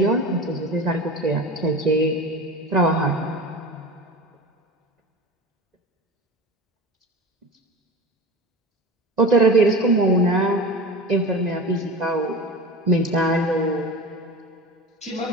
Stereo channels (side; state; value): both; normal; correlation 0.31